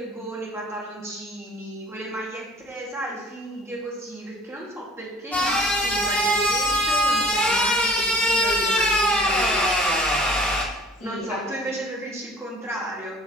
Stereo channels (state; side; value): normal; both; correlation 0.51